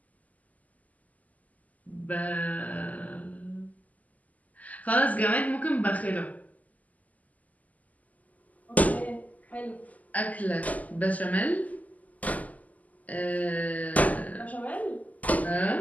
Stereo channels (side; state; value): right; late; 0.076 ms